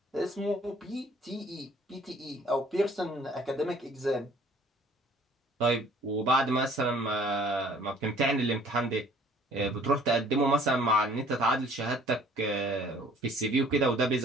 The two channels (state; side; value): normal; both; correlation 0.55